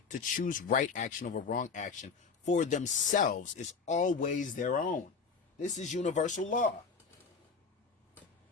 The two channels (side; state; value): right; quieter; 5.2 dB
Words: to choose right action over wrong action for themselves is always their own. This is universal law.